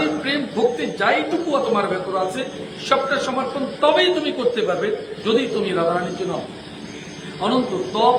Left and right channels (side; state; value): both; identical; correlation 1.00